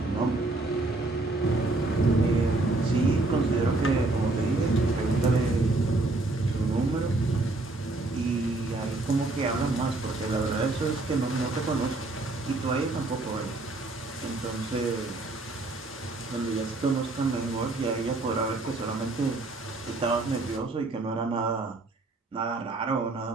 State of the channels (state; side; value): quieter; left; 3.1 dB